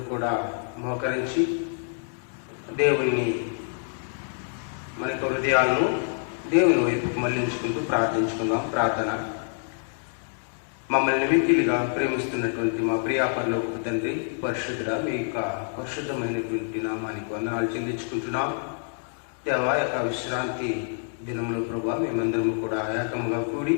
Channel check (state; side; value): silent; right; digital silence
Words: కూడా మోకరించి దేవుణ్ణి మన యొక్క హృదయాలను దేవుని వైపుకు మళ్లించుకుంటూ ప్రార్థించుకుందాం. ప్రార్థన. మమ్మల్ని మిక్కిలిగా ప్రేమిస్తున్నటువంటి మా ప్రియాపరలోక తండ్రి, పరిశుద్ధుడా, మీ యొక్క పరిశుద్ధమైనటువంటి నామానికి వందనాలు చెల్లించుకుంటున్నాం. దేవా, యొక్క విశ్రాంతి దినంలో ప్రభా మేమందరం కూడా ఏకంగా కూడి